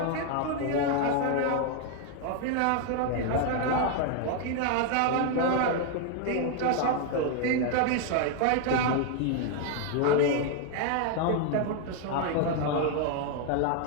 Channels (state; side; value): different; both; correlation 0.00